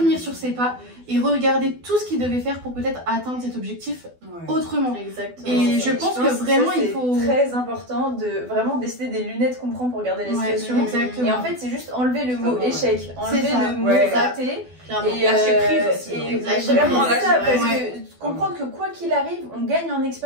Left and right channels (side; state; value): left; late; 12 ms